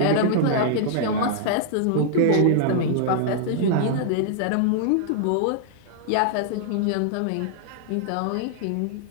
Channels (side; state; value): both; different; correlation -0.01